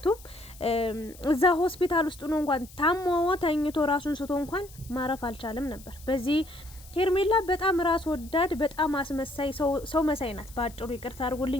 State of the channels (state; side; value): noise; left; hiss, 21 dB below the sound